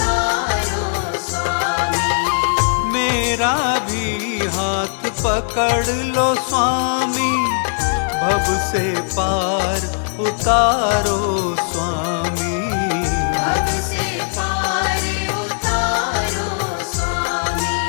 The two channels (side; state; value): right; silent; digital silence